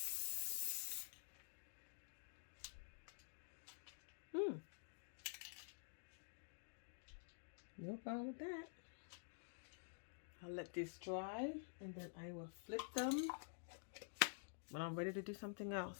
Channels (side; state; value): right; silent; digital silence